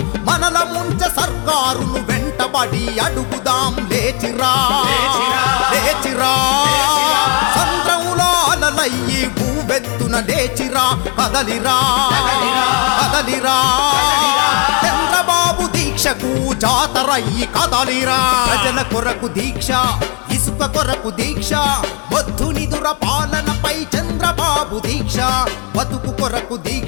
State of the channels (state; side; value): quieter; right; 35.3 dB